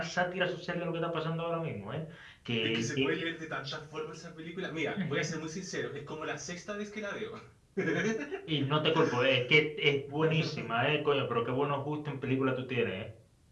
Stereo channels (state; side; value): identical; both; correlation 1.00